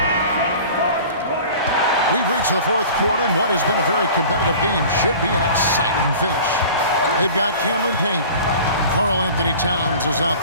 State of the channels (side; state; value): both; inverted; correlation -0.42